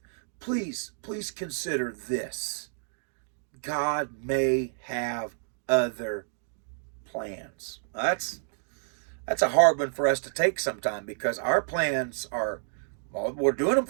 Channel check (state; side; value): silent; left; digital silence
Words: Please consider this. God may have other plans. That's a hard one for us to take sometime, because our plans are, well, we're doing them